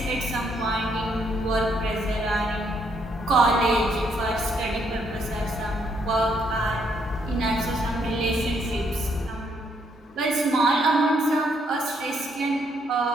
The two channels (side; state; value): both; normal; correlation 0.72